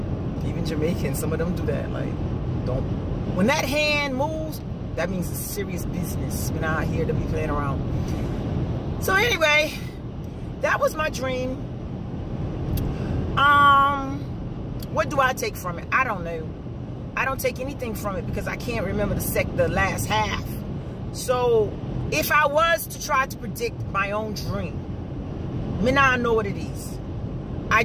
Even Jamaicans, some of them do that. Like, when that hand moves, that means it's serious business. We're not here to be playing around. So anyway, that was my dream. What do I take from it? I don't know. I don't take anything from it because I can't remember the last half. So if I was to try to predict my own dream, me now I know what it is. I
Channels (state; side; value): identical; both; correlation 1.00